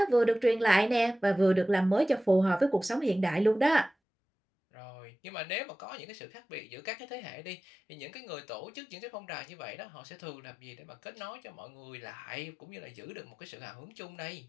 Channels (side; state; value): right; drops out; at 3.9 s